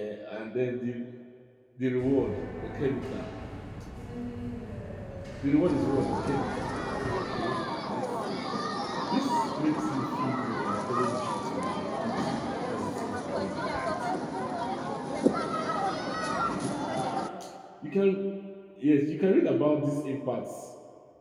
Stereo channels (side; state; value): both; identical; correlation 1.00